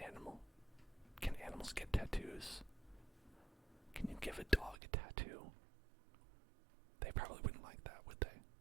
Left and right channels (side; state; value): left; drops out; at 4.8 s